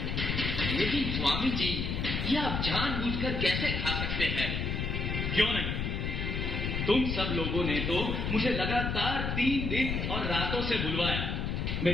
लेकिन स्वामी जी, ये आप जानबूझकर कैसे खा सकते हैं? क्यों नहीं? तुम सब लोगों ने तो मुझे लगातार 3 दिन और रातों से बुलवाया,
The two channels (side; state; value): left; noise; rumble, 1 dB below the sound